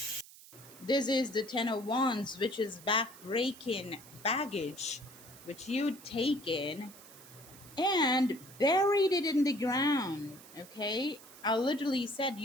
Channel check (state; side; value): noise; right; hiss, 20 dB below the sound